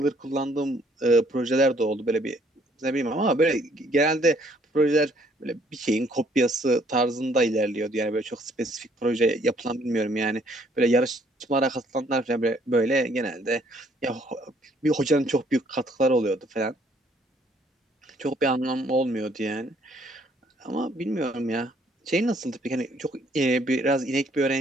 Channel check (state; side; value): normal; both; correlation 0.64